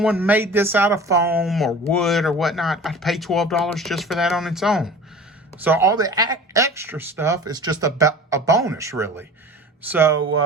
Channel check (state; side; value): normal; both; correlation 0.40